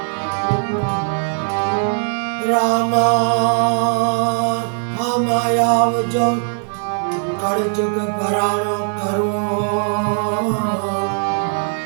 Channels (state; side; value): silent; left; 67 dB below the other